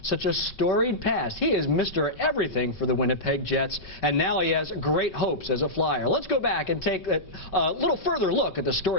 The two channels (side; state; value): right; late; 5.3 ms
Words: such a storied past? He is Mr. Everything for the Winnipeg Jets, and now he has great hopes as a Flyer. Let's go back and take a little further look at the